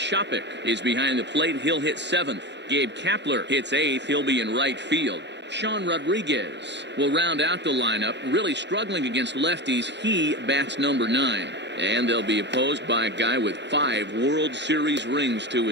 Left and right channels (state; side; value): late; left; 0.51 ms